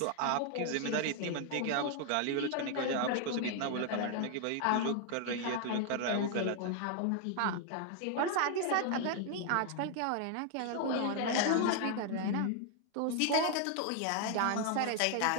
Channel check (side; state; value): both; different; correlation 0.00